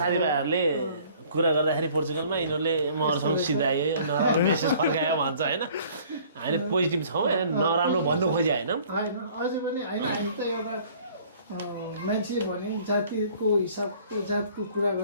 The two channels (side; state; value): both; inverted; correlation -0.54